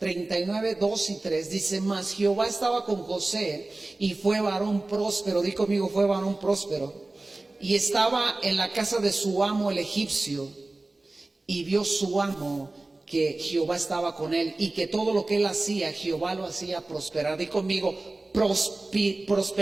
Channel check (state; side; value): quieter; left; 3.0 dB